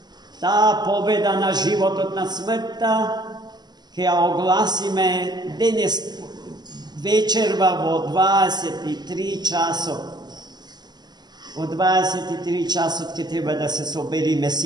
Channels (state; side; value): late; left; 0.20 ms